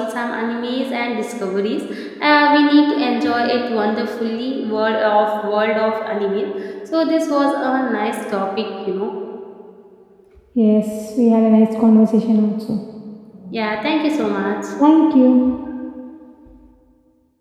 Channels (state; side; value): identical; both; correlation 1.00